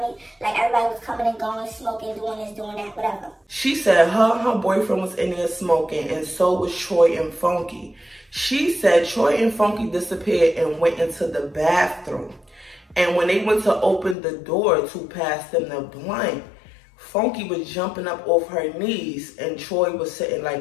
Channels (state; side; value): drops out; right; at 14.2 s